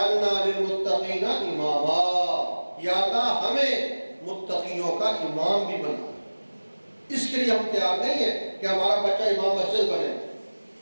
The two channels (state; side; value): inverted; both; correlation -1.00